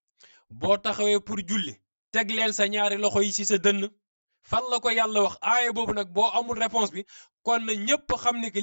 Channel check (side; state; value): both; inverted; correlation -1.00